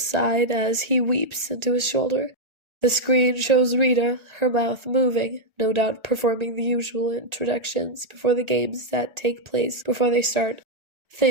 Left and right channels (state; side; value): late; left; 1.4 ms